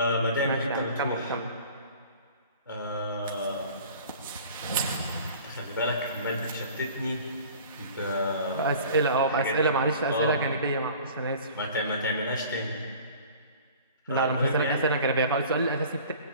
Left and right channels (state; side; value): inverted; both; correlation -0.45